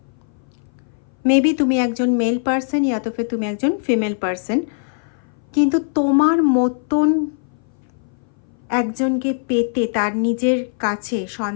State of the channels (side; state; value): right; silent; 59 dB below the other